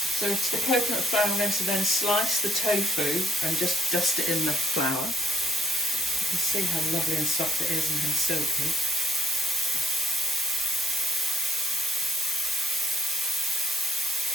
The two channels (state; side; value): normal; both; correlation 0.67